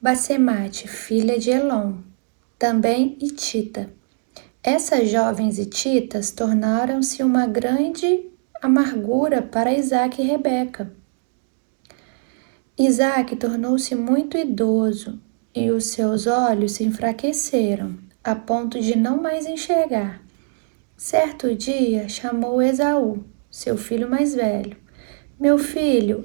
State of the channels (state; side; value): silent; left; digital silence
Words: Basemate, filha de Elon, também hitita. Essas jovens hititas tornaram-se uma grande amargura para Isaque e Rebeca. Isaque tornou-se muito idoso e os seus olhos se enfraqueceram, a ponto de não mais enxergar. Certo dia chamou Esaú, seu filho mais velho. Meu filho,